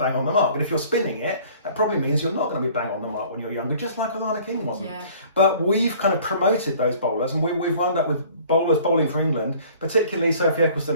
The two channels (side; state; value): both; inverted; correlation -0.52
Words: on the mark. And if you're spinning it, that probably means you're not going to be bang on the mark when you're younger, just like Alana King wasn't. Yeah. But we've kind of promoted those bowlers, and we've wound up with bowlers bowling for England, particularly Sophie